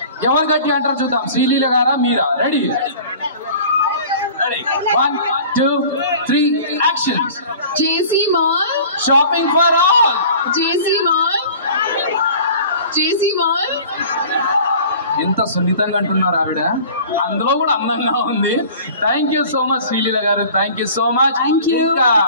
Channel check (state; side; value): inverted; both; correlation -0.44